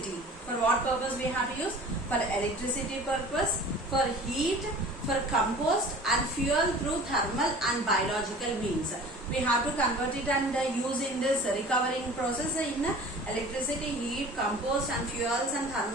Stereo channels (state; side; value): normal; both; correlation 0.43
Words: For what purpose we have to use? For electricity purpose, for heat, for compost and fuel through thermal and biological means. We have to convert it and use in this recovering process in electricity, heat, compost and fuels and